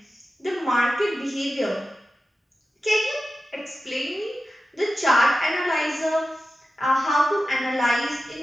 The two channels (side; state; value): both; normal; correlation 0.93